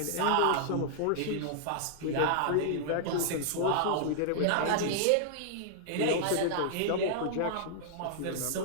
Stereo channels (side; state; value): both; different; correlation -0.01